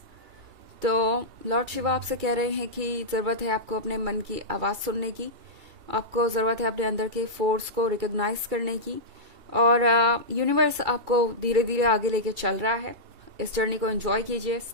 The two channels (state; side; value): late; left; 2.3 ms